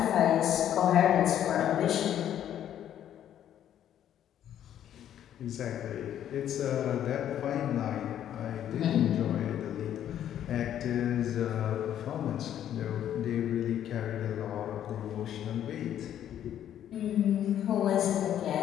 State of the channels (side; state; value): right; quieter; 10.6 dB